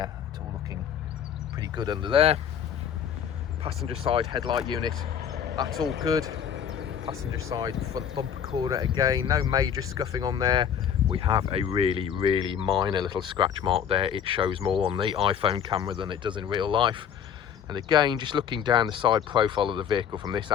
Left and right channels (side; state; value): right; quieter; 8.5 dB